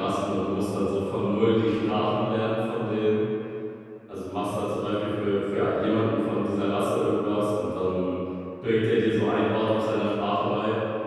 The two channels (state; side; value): identical; both; correlation 1.00